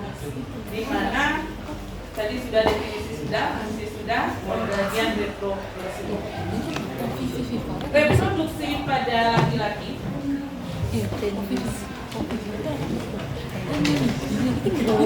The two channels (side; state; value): both; identical; correlation 1.00